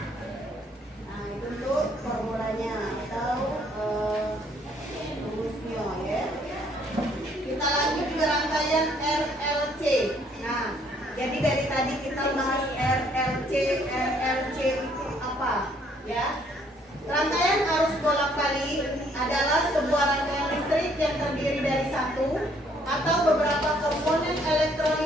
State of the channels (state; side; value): normal; both; correlation 0.65